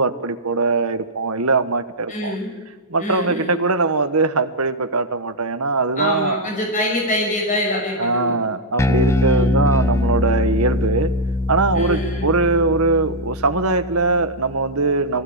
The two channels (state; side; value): normal; both; correlation -0.07